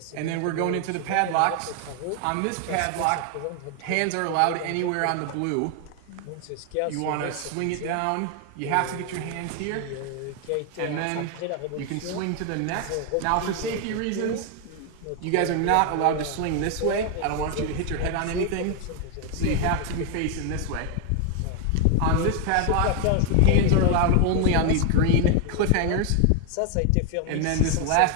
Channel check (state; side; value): different; both; correlation 0.01